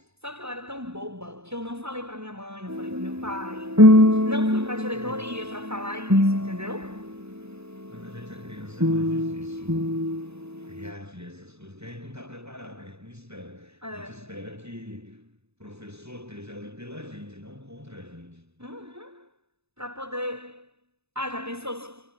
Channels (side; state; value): left; late; 0.80 ms